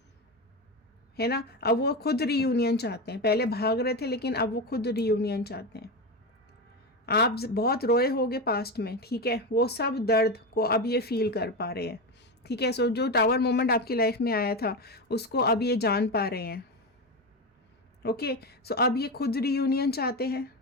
है ना। अब वो खुद रीयूनियन चाहते हैं, पहले भाग रहे थे लेकिन अब वो खुद रीयूनियन चाहते हैं। आप बहुत रोए होगे पास्ट में, ठीक है, वो सब दर्द को अब ये फील कर पा रहे हैं, ठीक है। सो जो टावर मोमेंट आपकी लाइफ में आया था उसको अब ये जान पा रहे हैं। ओके, सो अब ये खुद रीयूनियन चाहते हैं।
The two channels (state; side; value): normal; both; correlation 0.17